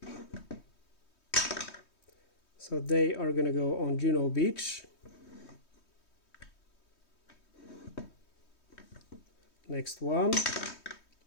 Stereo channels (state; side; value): late; right; 3.2 ms